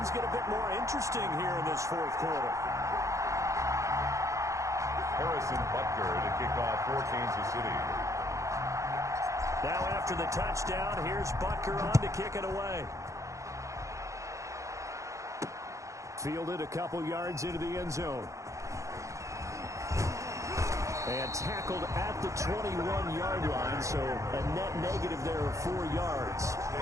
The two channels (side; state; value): left; late; 0.15 ms